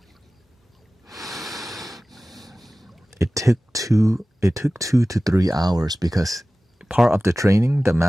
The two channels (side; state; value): both; normal; correlation 0.97